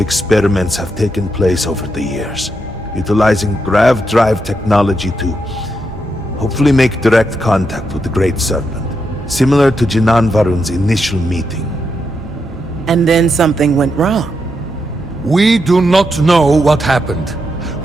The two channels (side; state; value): both; normal; correlation 0.83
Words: have taken place over the years, utilizing grav drive technology to hopefully make direct contact with the Great Serpent, similar to Jinan Varun's initial meeting. And then something went wrong. We do not know what happened.